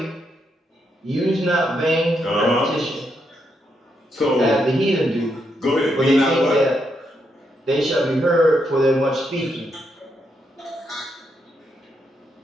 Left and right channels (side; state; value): both; normal; correlation 0.80